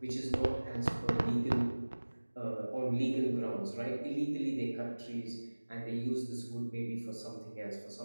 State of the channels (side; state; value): both; inverted; correlation -1.00